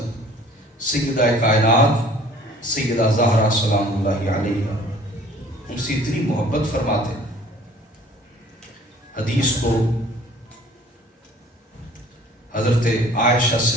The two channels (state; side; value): normal; both; correlation 0.52